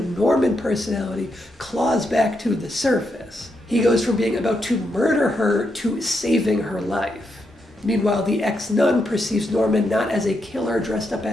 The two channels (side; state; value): both; normal; correlation 0.82